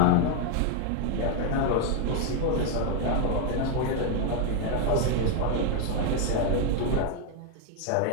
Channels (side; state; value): both; different; correlation 0.00